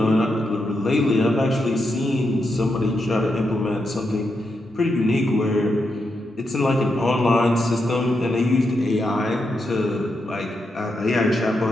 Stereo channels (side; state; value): both; normal; correlation 0.84